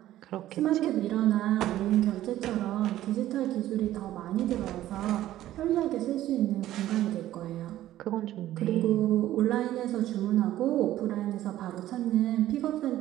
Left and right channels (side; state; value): left; quieter; 13.8 dB